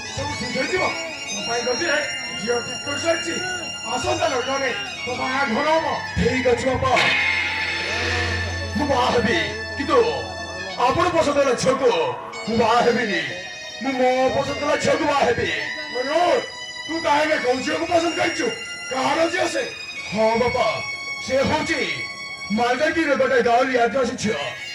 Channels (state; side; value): identical; both; correlation 1.00